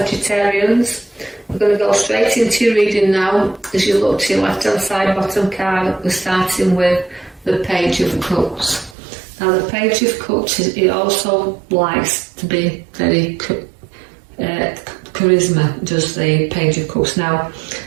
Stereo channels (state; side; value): drops out; left; at 9.0 s